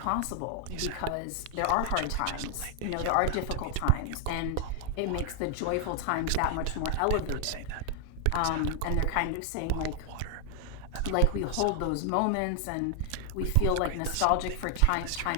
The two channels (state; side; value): different; both; correlation 0.00